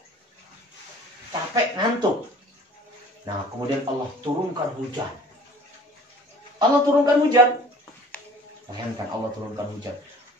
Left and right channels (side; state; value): both; normal; correlation 0.48